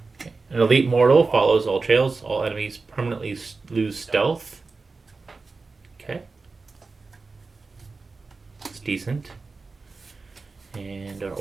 Okay. An Elite Mortal follows all trails. All enemies permanently lose stealth. Okay. It's decent. And our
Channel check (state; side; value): quieter; left; 4.0 dB